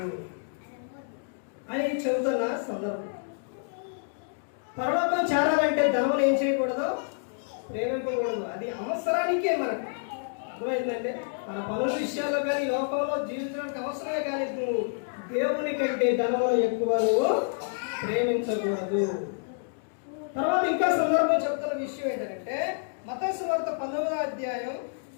అని చెబుతున్న సందర్భం. పరలోకం చేరాలంటే ధనం ఏం చేయకూడదు? ప్రేమించకూడదు. అది అవసరానికే మనకు. అర్థమైందంటే మన పనుల విషయాల్లో కానీ లోకంలో జీవించడానికి అవసరమే, కానీ నువ్వు దేవుని కంటే ధనమును ఎక్కువ నువ్వు ప్రేమించకూడదు. తర్వాత ఇంకా సందర్భం చెప్తున్న విషయం ఏంటంటే మత్తయి సువార్త 19:19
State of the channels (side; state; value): right; silent; digital silence